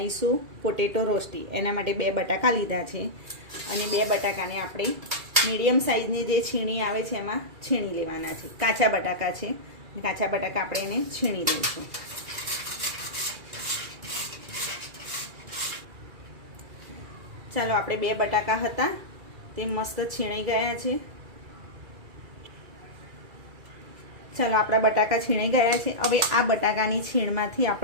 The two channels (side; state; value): left; late; 2.3 ms